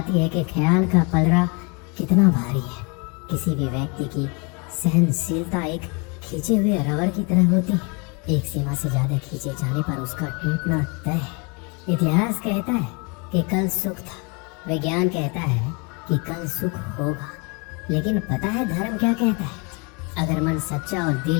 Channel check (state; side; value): quieter; right; 31.9 dB